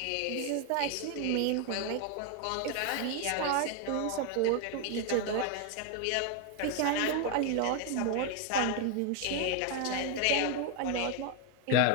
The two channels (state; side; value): different; both; correlation 0.01